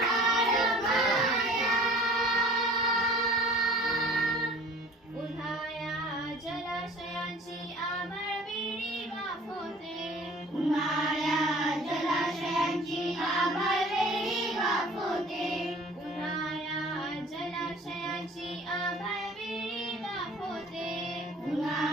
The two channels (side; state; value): both; normal; correlation 0.48